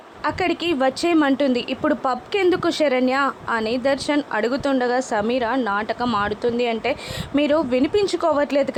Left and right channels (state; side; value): identical; both; correlation 1.00